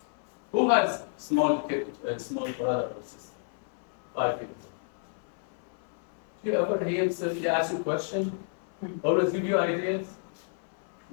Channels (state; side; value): silent; right; 58 dB below the other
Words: Who has small brother or sister? 5 years old. Do you ever hear somebody ask a question? Always give you ideas?